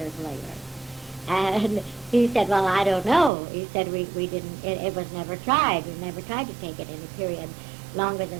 later? And he said, well, I don't know. He said, we didn't, it was never tried. We never tried to take it in a period longer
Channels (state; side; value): drops out; left; at 3.3 s